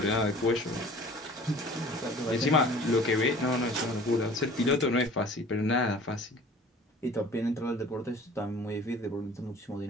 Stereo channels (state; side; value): normal; both; correlation 0.46